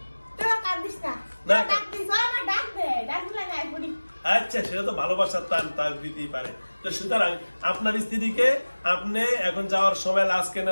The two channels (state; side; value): inverted; both; correlation -1.00